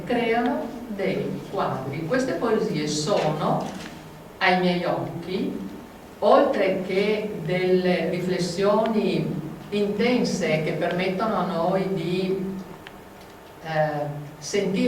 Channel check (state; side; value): identical; both; correlation 1.00